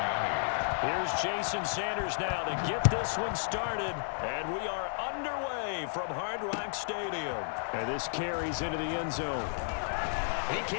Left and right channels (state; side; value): silent; right; 56 dB below the other